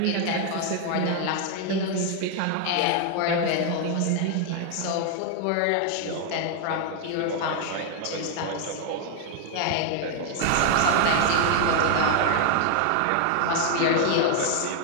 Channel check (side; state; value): both; different; correlation 0.00